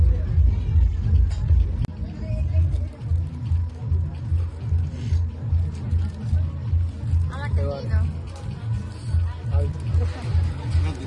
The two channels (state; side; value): identical; both; correlation 1.00